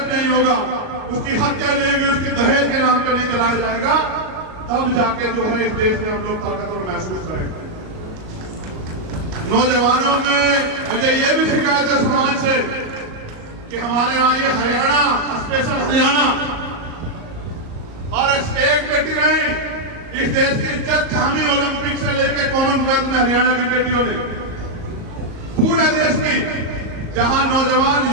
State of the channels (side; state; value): left; late; 37 ms